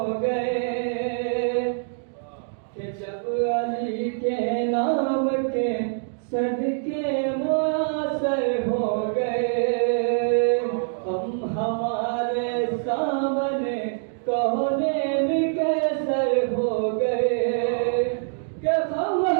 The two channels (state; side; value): silent; left; digital silence